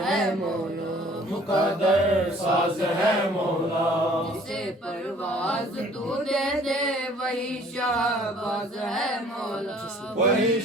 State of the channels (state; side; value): normal; both; correlation 0.54